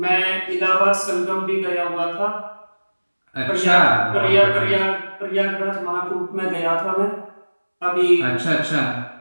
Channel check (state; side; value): inverted; both; correlation -1.00